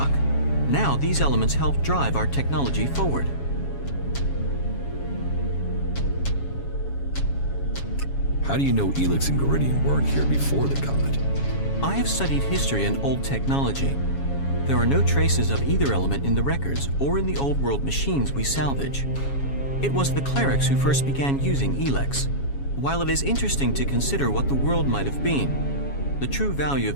Now these elements help drive our technology forward. How do you know ELEX and Geridium weren't here before the comet? I have studied history and old technology. There are no traces of either element in the records or in the old world machines we salvage. It was the clerics who first began using ELEX. While it is interesting to consider what the world might have been, the true value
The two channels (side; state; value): right; late; 7.2 ms